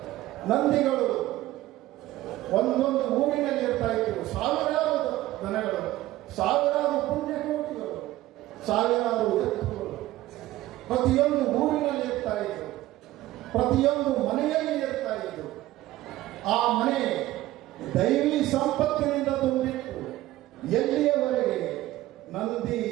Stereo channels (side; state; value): left; quieter; 16.1 dB